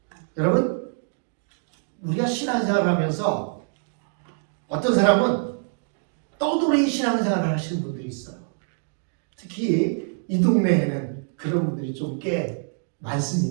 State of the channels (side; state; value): left; silent; 58 dB below the other